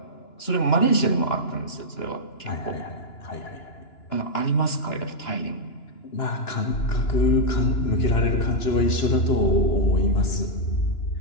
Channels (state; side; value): late; right; 2.9 ms